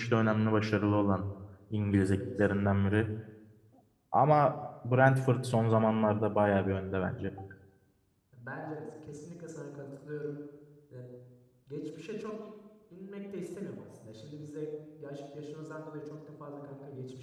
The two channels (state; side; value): identical; both; correlation 1.00